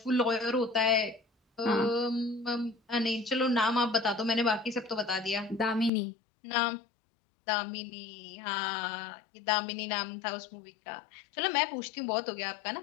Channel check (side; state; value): right; drops out; at 5.9 s